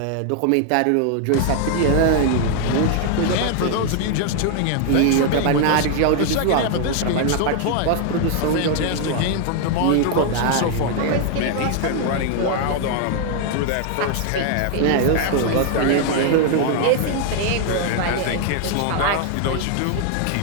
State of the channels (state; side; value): different; both; correlation 0.00